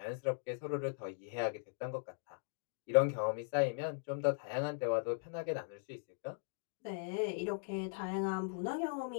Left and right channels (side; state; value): right; silent; digital silence